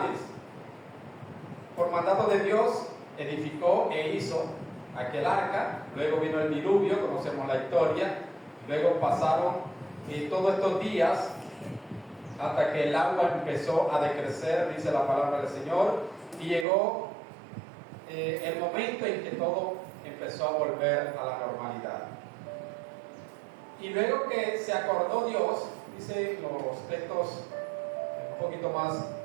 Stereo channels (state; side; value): drops out; left; at 16.7 s